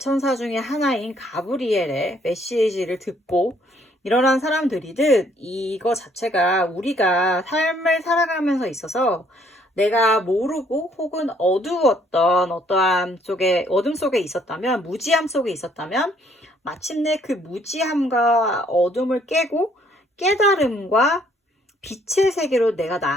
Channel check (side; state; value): both; normal; correlation 0.65